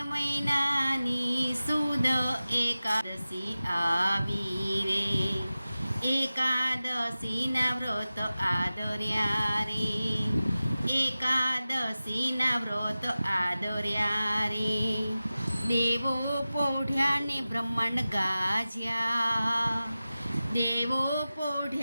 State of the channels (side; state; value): both; inverted; correlation -0.96